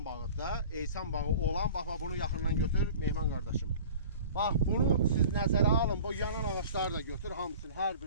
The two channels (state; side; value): inverted; both; correlation -0.42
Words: bağıdır. Eysan bağı olan, bax, bunu yaxından götür, Mehman qardaşım. Bax, bunu siz nəzərə alın, bu yanan ağaçları da götür, hamısını, hər